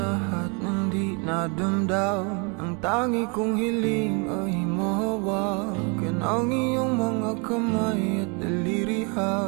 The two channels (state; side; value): quieter; left; 34.2 dB